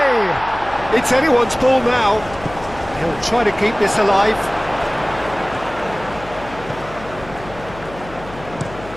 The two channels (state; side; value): noise; left; hum, 17 dB below the sound